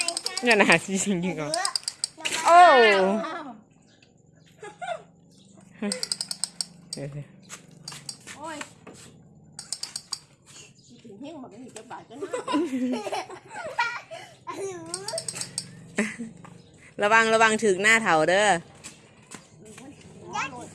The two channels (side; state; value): both; identical; correlation 1.00